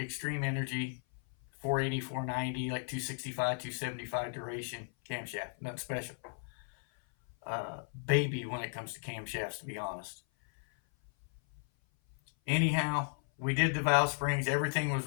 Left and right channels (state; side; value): silent; right; 54 dB below the other